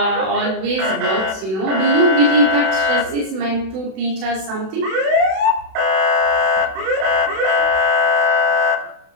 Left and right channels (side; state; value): left; late; 32 ms